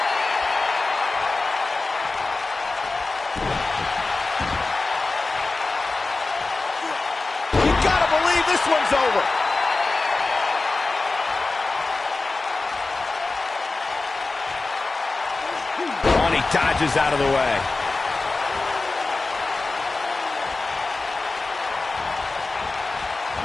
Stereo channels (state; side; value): quieter; right; 3.5 dB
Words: Gotta believe this one's over. Oh, and he dodges out of the way.